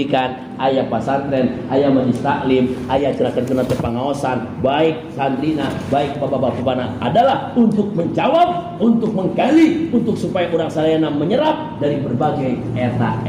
aya pesantren, aya majelis taklim, aya cenah-cenah pengawasan, baik santrina, baik bapak-bapakna adalah untuk menjawab, untuk menggali, untuk supaya urang sadayana menyerap dari berbagai eta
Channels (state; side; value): identical; both; correlation 1.00